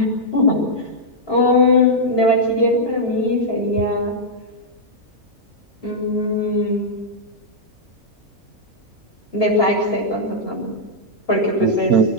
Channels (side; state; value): both; normal; correlation -0.07